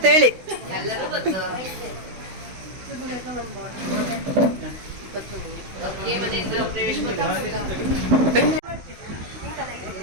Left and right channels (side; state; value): left; late; 16 ms